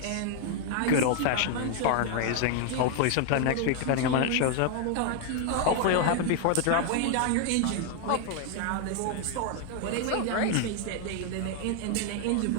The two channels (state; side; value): different; both; correlation 0.00